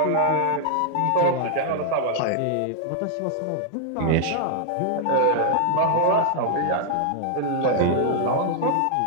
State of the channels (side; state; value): both; different; correlation 0.00